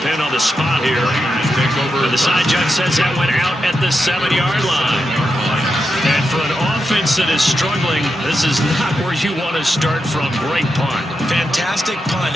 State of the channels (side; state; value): both; normal; correlation 0.87